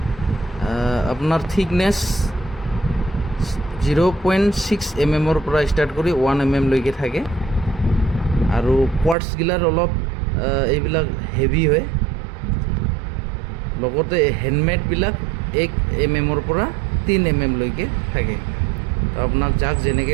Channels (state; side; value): drops out; left; at 9.2 s